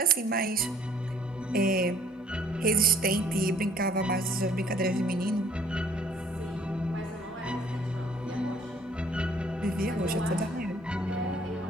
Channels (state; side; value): normal; both; correlation 0.59